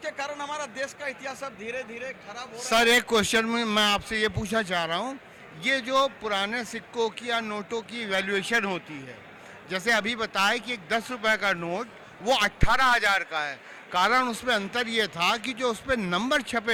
कारण हमारा देश का इतिहास अब धीरे धीरे खराब हो रहा है। सर एक क्वेश्चन में मैं आपसे ये पूछना चाह रहा हूँ, ये जो पुराने सिक्कों की या नोटों की वैल्यूएशन होती है, जैसे अभी बताया कि एक 10 रुपए का नोट वो 18,000 का है, कारण उसमें अंतर ये था कि जो उसमें नंबर छपे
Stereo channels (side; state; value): both; identical; correlation 1.00